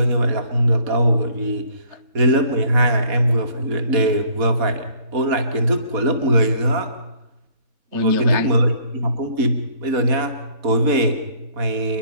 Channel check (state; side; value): late; left; 4.1 ms